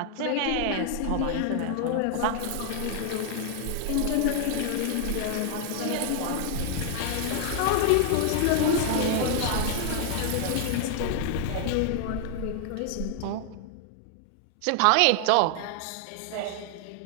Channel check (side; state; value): both; different; correlation 0.00